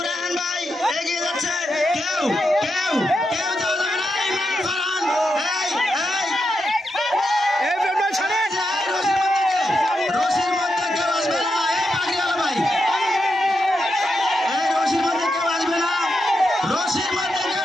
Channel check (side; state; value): both; normal; correlation 0.85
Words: রায়হান ভাই এগিয়ে যাচ্ছে। কেউ কেউ কেউ যাওয়া যাবে না। ইমরান ফারহান, রশির মধ্যে কেউ আসবে না। এই পাগড়িওয়ালা ভাই, এই রশির মধ্যে কেউ আসবে না। রশির মধ্যে কেউ